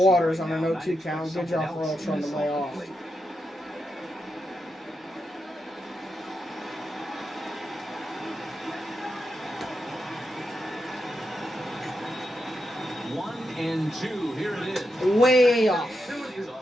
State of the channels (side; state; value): both; normal; correlation 0.86